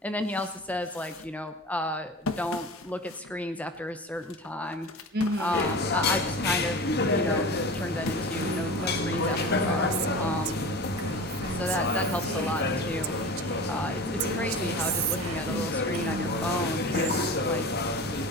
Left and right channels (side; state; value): both; normal; correlation 0.34